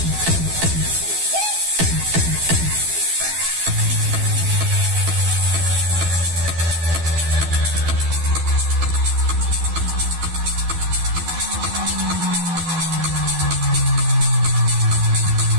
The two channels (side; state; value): left; late; 12 ms